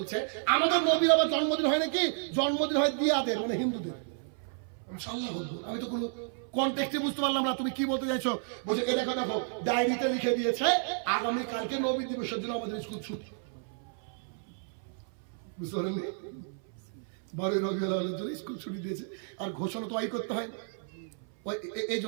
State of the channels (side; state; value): left; silent; 56 dB below the other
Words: আমাদের নবীর আবার জন্মদিন হয় নাকি? জন্মদিন হয় দিয়াদের, মানে হিন্দুদের। আমি তো কোনো কনটেক্সটে বুঝতে পারলাম না তুমি কি বলতে চাইছো। বলছে এ দেখো ডায়েরিতে লিখে দিয়েছে আগামী কালকে নবী দিবসের জন্য আমাদের স্কুল ছুটি। বুঝতে পারেননি? 12 রবিউল আউয়ালের জন্য স্কুল ছুটি দিয়েছে, আর ঘোষণা তো করতে হয়। এই